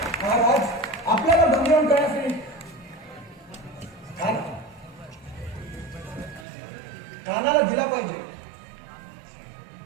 महाराज, आपल्याला बंदीवान करण्यासाठी खानाला दिला पाहिजे.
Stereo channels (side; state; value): left; drops out; at 6.5 s